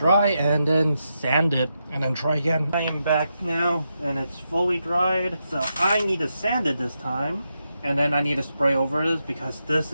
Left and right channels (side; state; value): both; inverted; correlation -0.85